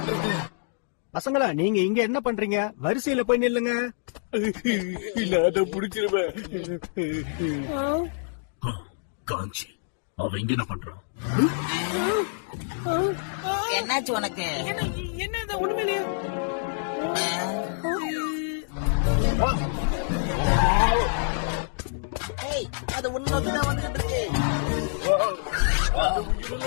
பசங்களா நீங்க இங்க என்ன பண்றீங்க? வரிசையில போய் நில்லுங்க. இல்ல அத புடிச்சிருவேன். காஞ்சி அவ இங்க என்ன பண்றான்? என்னாச்சு உனக்கு? என்ன இது உண்மையிலேயே? ஏய், அது உன்னோக்கி தான் வந்துட்டு இருக்கு.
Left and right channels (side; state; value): right; silent; digital silence